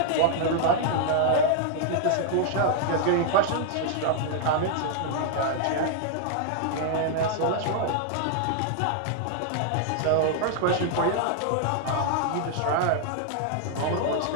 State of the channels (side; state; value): both; different; correlation -0.01